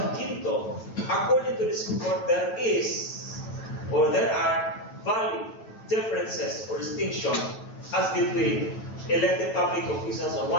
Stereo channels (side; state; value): right; late; 9.2 ms